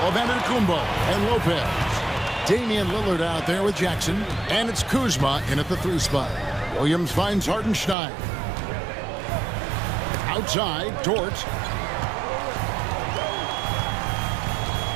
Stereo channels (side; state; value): left; drops out; at 8.0 s